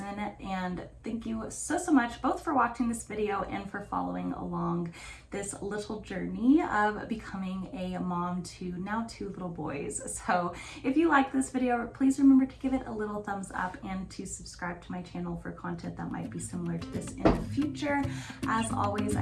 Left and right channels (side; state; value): both; identical; correlation 1.00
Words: And thank you so much both for watching this video and for following along this little journey of becoming a mom to now 2 little boys. So if you like this video, please remember to give it a little thumbs up and to subscribe to my channel for content that might be similar to this in the future. As always, I